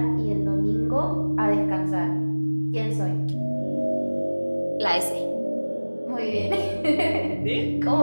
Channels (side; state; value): both; inverted; correlation -1.00